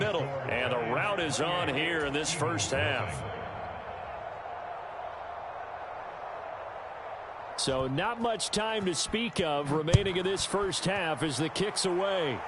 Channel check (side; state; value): both; identical; correlation 1.00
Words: And the route is on here in this first half. So not much time to speak of remaining in this first half as the kick's away.